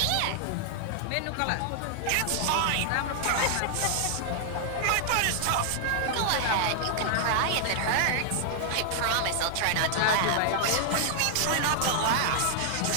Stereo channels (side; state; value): both; different; correlation 0.00